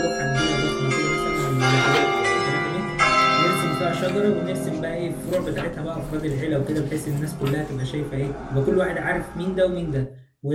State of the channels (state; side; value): identical; both; correlation 1.00